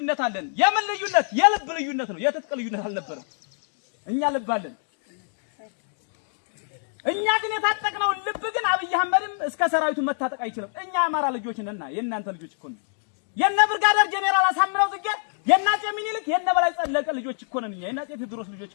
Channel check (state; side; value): silent; right; 61 dB below the other